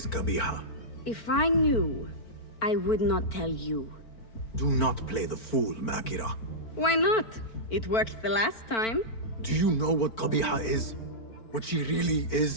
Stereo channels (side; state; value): right; late; 4.5 ms